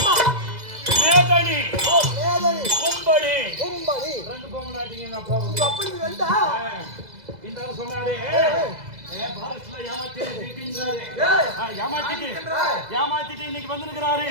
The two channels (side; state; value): left; late; 2.0 ms